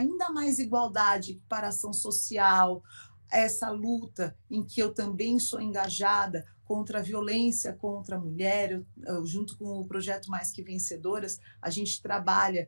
mais igualdade, equiparação social, essa luta em que eu também sou engajada contra a violência contra a mulher, junto com o projeto Mais Que Vencedoras, a gente trabalha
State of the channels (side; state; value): both; inverted; correlation -1.00